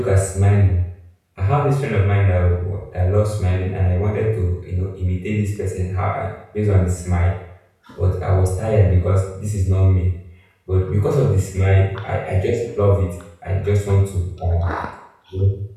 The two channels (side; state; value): both; identical; correlation 1.00